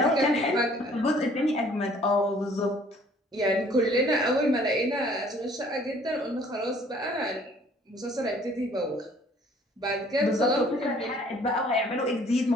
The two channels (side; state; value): both; normal; correlation 0.57